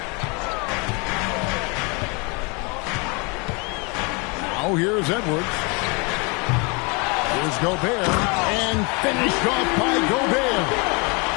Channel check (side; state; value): right; quieter; 30.7 dB